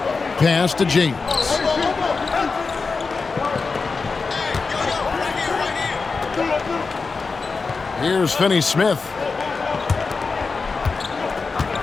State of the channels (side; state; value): right; quieter; 4.5 dB